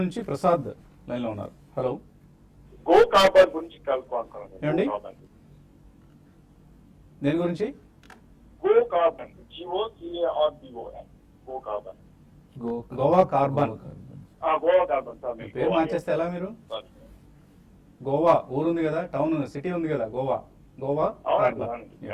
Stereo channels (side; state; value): both; identical; correlation 1.00